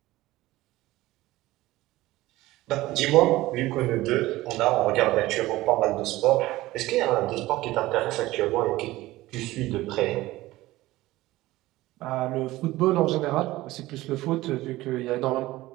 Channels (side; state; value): left; quieter; 17.7 dB